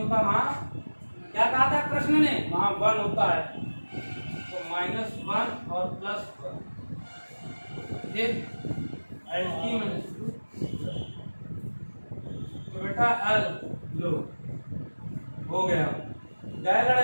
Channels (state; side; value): inverted; both; correlation -1.00